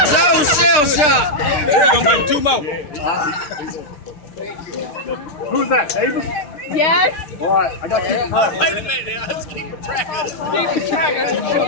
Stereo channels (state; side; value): late; right; 6.7 ms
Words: That was shell shot. We're going to give 2 more. Who's that, Davis? Yes. All right, I got to keep track. Wait a minute now. Let's keep track of